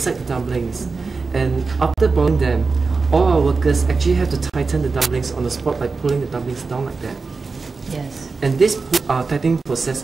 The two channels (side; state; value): left; quieter; 4.3 dB